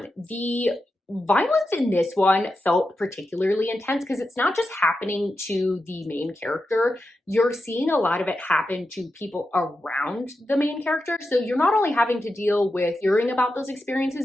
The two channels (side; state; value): both; normal; correlation 0.89